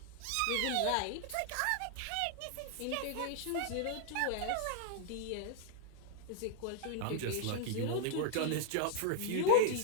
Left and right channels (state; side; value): different; both; correlation -0.01